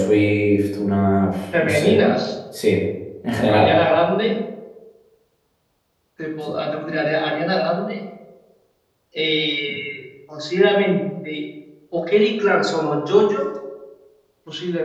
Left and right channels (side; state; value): both; identical; correlation 1.00